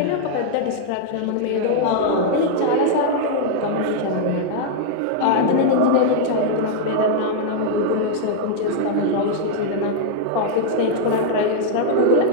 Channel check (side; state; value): both; different; correlation -0.01